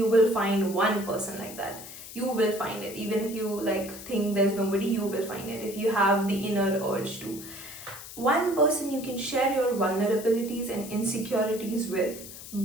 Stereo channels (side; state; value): left; noise; hiss, 13 dB below the sound